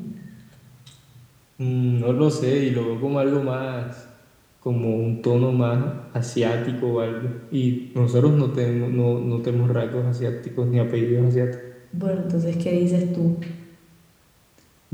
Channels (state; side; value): identical; both; correlation 1.00